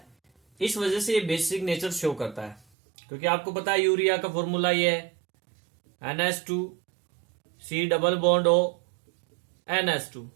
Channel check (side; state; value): left; drops out; at 2.6 s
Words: इस वजह से ये बेसिक नेचर शो करता है। क्योंकि आपको पता है यूरिया का फॉर्मूला ये है NH2C double bond O NH2।